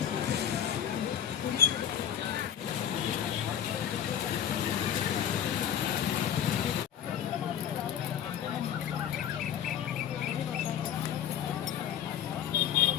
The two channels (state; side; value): quieter; right; 9.4 dB